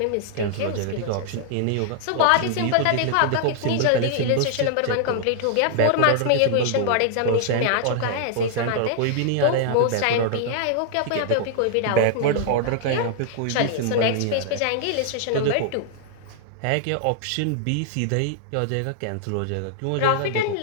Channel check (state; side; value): different; both; correlation -0.01